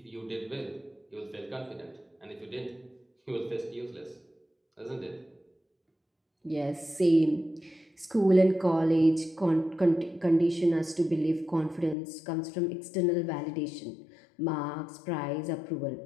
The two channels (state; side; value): drops out; right; at 12.0 s